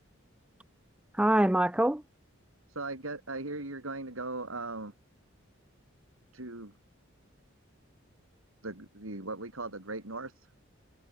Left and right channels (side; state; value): both; normal; correlation 0.76